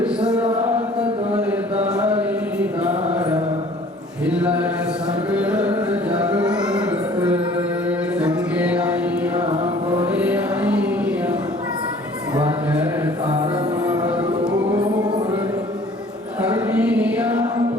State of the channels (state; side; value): normal; both; correlation 0.52